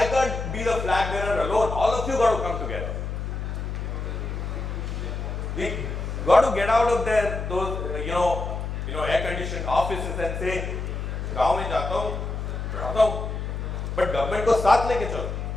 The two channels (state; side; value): noise; left; hum, 4 dB below the sound